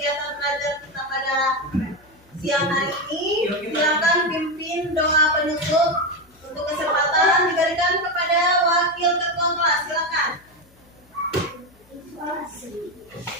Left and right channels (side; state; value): left; noise; hum, 30 dB below the sound